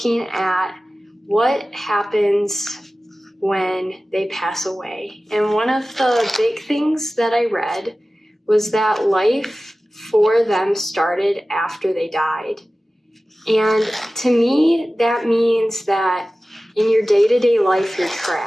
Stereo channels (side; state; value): both; normal; correlation 0.96